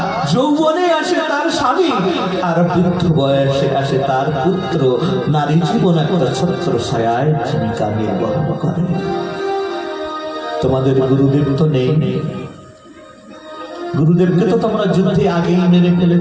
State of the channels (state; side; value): identical; both; correlation 1.00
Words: যৌবনে আসে তার স্বামী, আর বৃদ্ধ বয়সে আসে তার পুত্র। নারী জীবন একটা ছত্র ছায়ায় ভূমিকা নির্বাহ করে। তোমাদের গুরুদেব তো নেই, গুরুদেবকে তো তোমরা যুদ্ধে আগেই মেরে